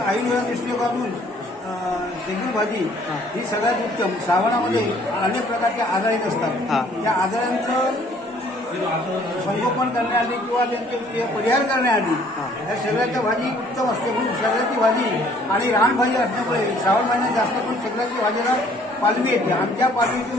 दृष्टिकोनातून शेगुल भाजी ही सगळ्यात उत्तम. श्रावणामध्ये अनेक प्रकारचे आजार येत हा. असतात. त्या आजारांचं संगोपन करण्याआधी किंवा त्यांचे परिहार करण्याआधी या शेगलाच्या भाजी उत्तम असते. म्हणून शेगलाची भाजी आणि रानभाजी असल्यामुळे श्रावण महिन्यात जास्त करून शेगलाची भाजीला पालवी येते. आमच्या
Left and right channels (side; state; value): both; normal; correlation 0.59